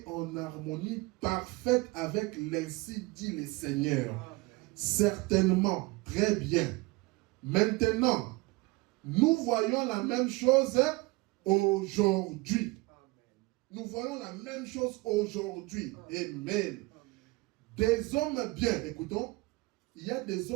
en harmonie parfaite avec l'ainsi dit le Seigneur. Certainement, très bien. Maintenant, nous voyons la même chose aujourd'hui. Nous voyons la même chose aujourd'hui. Amen. Des hommes bien, écoutons, il y a des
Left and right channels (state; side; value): quieter; left; 23.3 dB